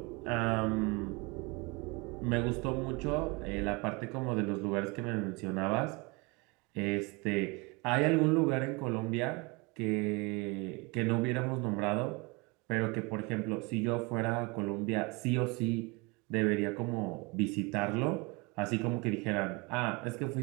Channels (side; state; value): left; quieter; 27.4 dB